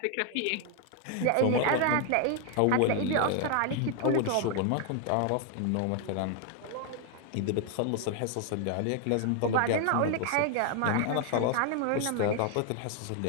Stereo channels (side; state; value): both; different; correlation 0.00